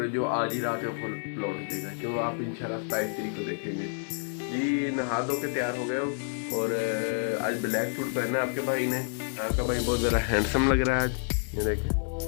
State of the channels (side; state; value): right; silent; digital silence